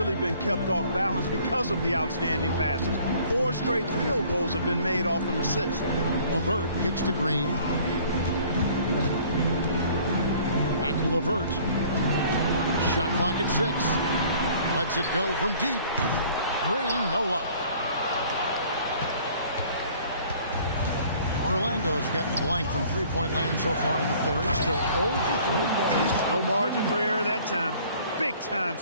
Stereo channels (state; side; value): inverted; both; correlation -0.54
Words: been kept off balance because of the outstanding passes. 4 straight field goals have been made off an assist. LeVert kicks to Green. Back to LeVert. Shot clock at 6. Lets it go from deep. Green, no luck. Orlando's gotten blank from three-point land so far in the third. Still 0 for 3. No margin for error that time. Big-time